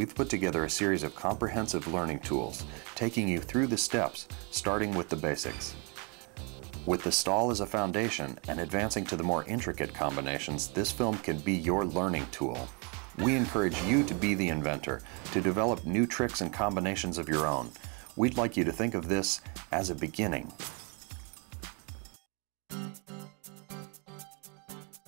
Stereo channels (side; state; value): left; quieter; 33.3 dB